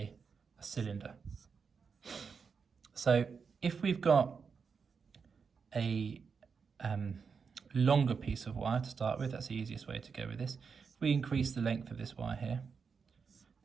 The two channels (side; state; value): left; quieter; 5.7 dB